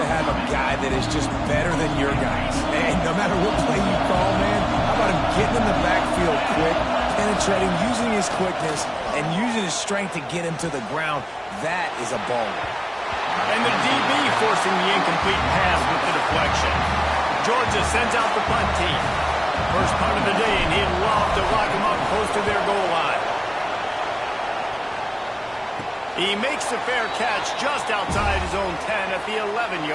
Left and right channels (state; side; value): identical; both; correlation 1.00